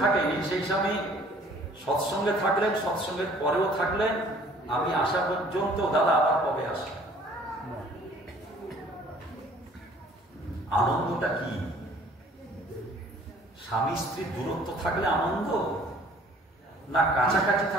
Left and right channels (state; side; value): normal; both; correlation 0.55